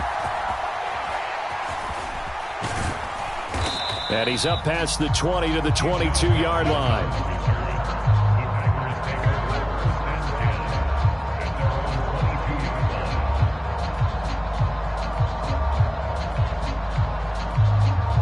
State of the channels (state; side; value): identical; both; correlation 1.00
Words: And he's up past the 20 to the 22-yard line.